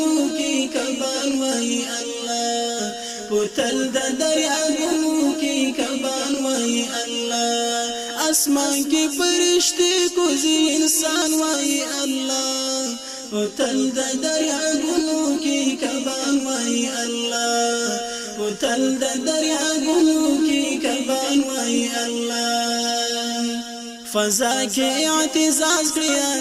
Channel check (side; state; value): both; identical; correlation 1.00